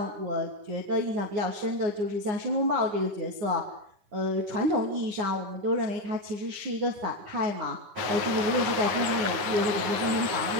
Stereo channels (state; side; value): late; left; 9.6 ms